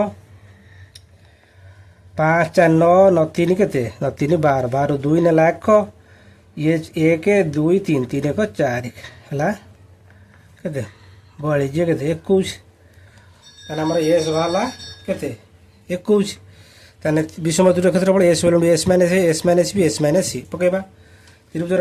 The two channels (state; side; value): identical; both; correlation 1.00